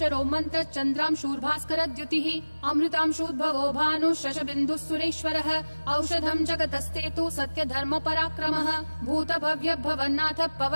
मन्त्र चन्द्रांशूर्भास्करद्युतिः अमृतांशूद्भवो भानुः शशबिन्दुः सुरेश्वरः औषधं जगतस्तेतु सत्यधर्म पराक्रमः भूतभव्य भवन्नाथ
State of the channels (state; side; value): inverted; both; correlation -1.00